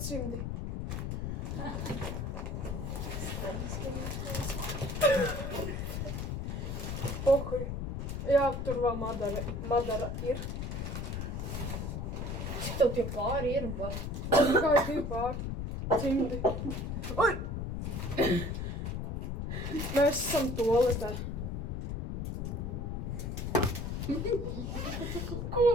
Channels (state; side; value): noise; left; rumble, 3 dB below the sound